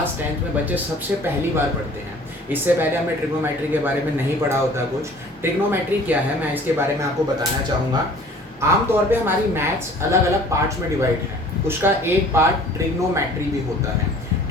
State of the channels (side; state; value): both; normal; correlation 0.50